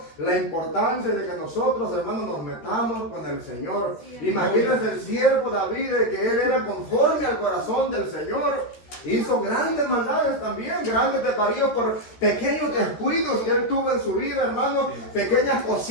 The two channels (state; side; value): late; right; 13 ms